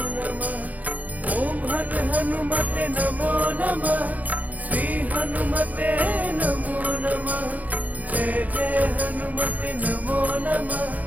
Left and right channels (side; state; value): left; late; 0.078 ms